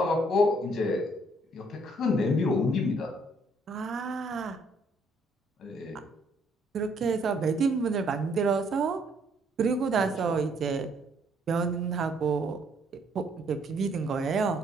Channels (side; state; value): both; normal; correlation 0.66